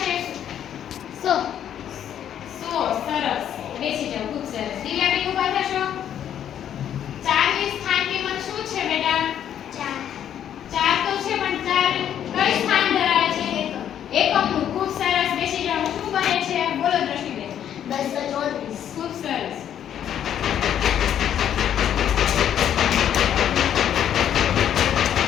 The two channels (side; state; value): right; quieter; 9.9 dB